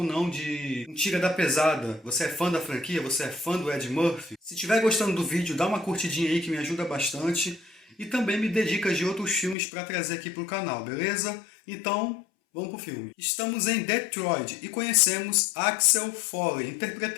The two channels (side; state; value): right; drops out; at 9.6 s